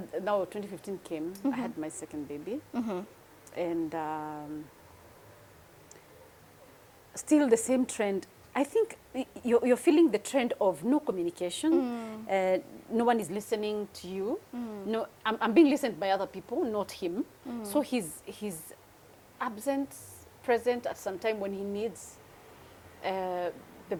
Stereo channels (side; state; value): both; identical; correlation 1.00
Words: now 2015 came, I had my second baby. And still the same trend. I think you're feeling the trend of no communication. No one is listening to you. No, I'm being listened by other people, not him. So he's absent, present at some time when he needs. The